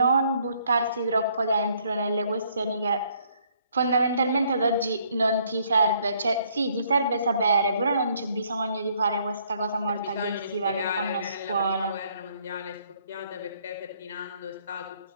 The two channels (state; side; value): inverted; both; correlation -0.66